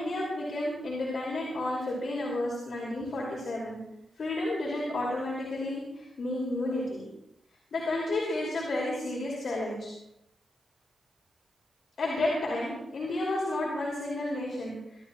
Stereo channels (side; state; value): both; normal; correlation 0.85